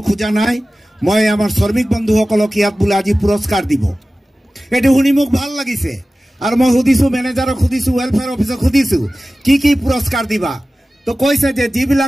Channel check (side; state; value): both; normal; correlation 0.96